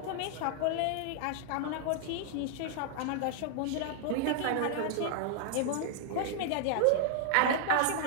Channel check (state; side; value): different; both; correlation -0.01